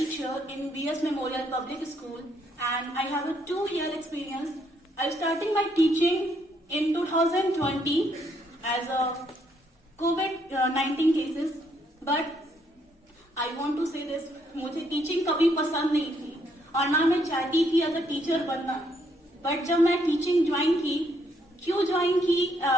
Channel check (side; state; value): both; normal; correlation 0.72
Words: in BS Memorial Public School, and I have a 2-year experience. I started my teaching in 2020 as a COVID-19 cases, but I want to say this, मुझे टीचिंग कभी पसंद नहीं थी और ना मैं चाहती थी एज अ टीचर बनना. बट जब मैं टीचिंग ज्वाइन की, क्यों ज्वाइन की,